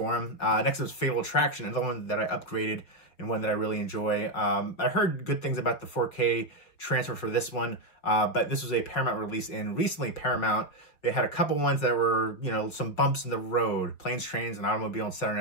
them. Next is Fatal Attraction, another one that I upgraded and one that I really enjoy. I heard good things about the 4K transfer for this one, but this was a Paramount release, and recently Paramount, they had a couple ones that were, some bumps in the road. Planes, Trains, and Automobile and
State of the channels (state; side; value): late; right; 5.6 ms